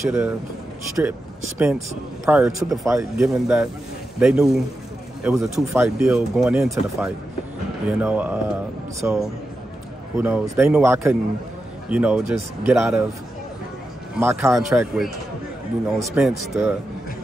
have stripped Spence prior to the fight, given that they knew it was a 2-fight deal going into the fight, you know, so who knows? They knew I couldn't, you know, just get out of my contract with, you know, Spence to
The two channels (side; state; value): both; normal; correlation 0.89